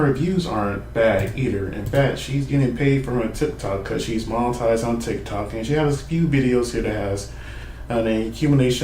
views aren't bad either. In fact, she's getting paid for her TikTok because she's monetized on TikTok, and she has a few videos here that has an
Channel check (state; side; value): identical; both; correlation 1.00